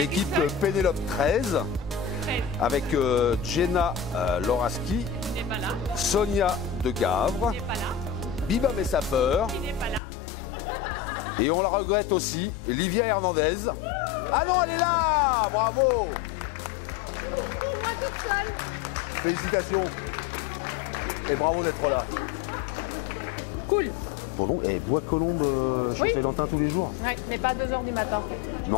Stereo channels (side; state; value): right; drops out; at 10.0 s